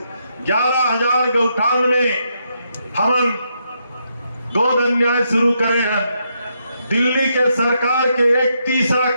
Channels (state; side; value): inverted; both; correlation -0.79